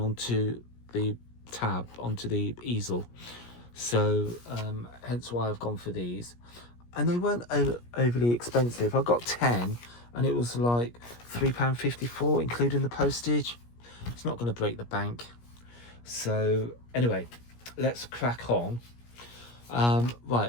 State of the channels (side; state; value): right; late; 17 ms